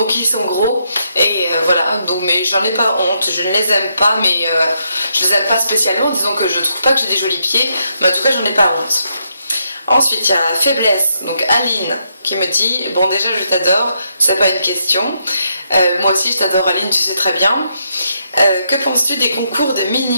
ils sont gros. Et voilà, donc, mais j'en ai pas honte, je ne les aime pas, mais je les aime pas spécialement, disons que je trouve pas que j'ai des jolis pieds, mais en tout cas j'en ai pas honte. Ensuite, il y a Faiblesse, donc Aline, qui me dit: bon, déjà je t'adore, c'est pas une question. Moi aussi je t'adore Aline, tu sais très bien. Que penses-tu des concours de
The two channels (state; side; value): inverted; both; correlation -0.79